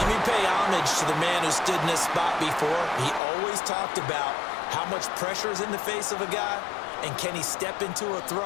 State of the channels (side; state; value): right; drops out; at 3.2 s